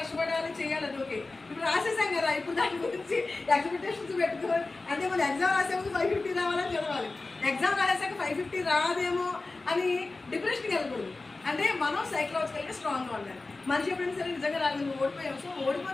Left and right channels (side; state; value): right; quieter; 3.4 dB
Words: చేయాలి, అది ఓకే. ఇప్పుడు రాసేసాం కదా, ఇప్పుడు దాని గురించి ఎక్స్పెక్టేషన్స్ పెట్టుకోవాలి. అంటే మనం ఎగ్జామ్ రాసే ముందు 550 రావాలని చదవాలి, ఎగ్జామ్ రాసాక 550 రాదేమో అని డిప్రెషన్కి వెళ్ళకూడదు. అంటే మనం సైకలాజికల్గా స్ట్రాంగ్గా ఉండాలి. మనిషి ఎప్పుడైనా సరే నిజంగా రాదు, నువ్వు ఓడిపోయావు, సో